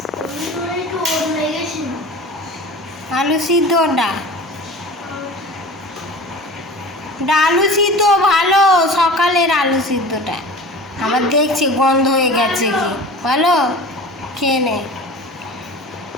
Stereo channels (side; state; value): both; normal; correlation 0.37